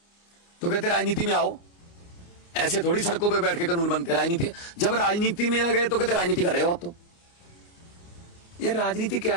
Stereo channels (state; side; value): late; right; 29 ms